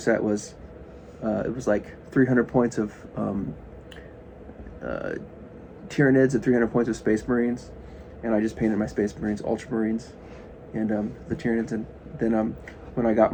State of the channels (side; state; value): both; identical; correlation 1.00